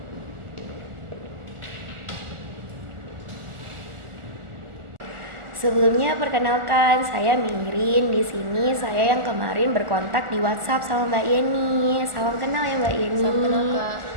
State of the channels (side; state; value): left; late; 1.4 ms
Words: Sebelumnya perkenalkan, saya Mirin. Di sini saya yang kemarin berkontak di WhatsApp sama Mbak Yeni. Salam kenal ya Mbak Yeni. Salam kenal Kak.